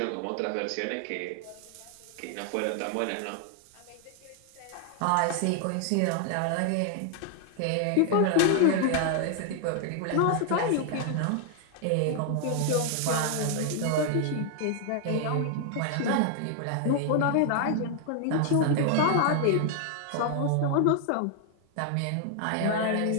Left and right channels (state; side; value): different; both; correlation 0.00